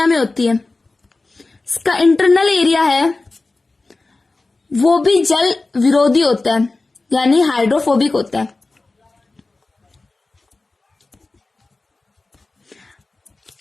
में होती है। इसका इंटरनल एरिया है वो भी जल विरोधी होता है यानी हाइड्रोफोबिक होता है।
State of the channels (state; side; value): quieter; right; 3.4 dB